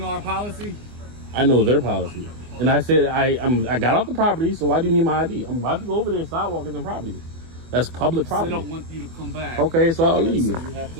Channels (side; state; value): left; late; 24 ms